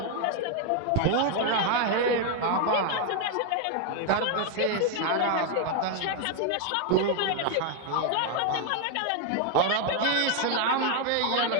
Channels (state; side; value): different; both; correlation 0.01